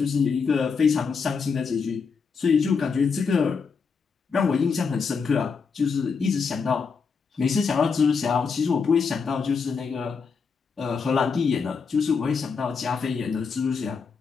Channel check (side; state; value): right; quieter; 5.5 dB